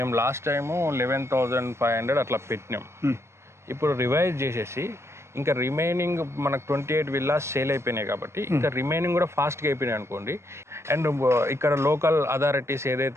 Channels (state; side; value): late; left; 0.13 ms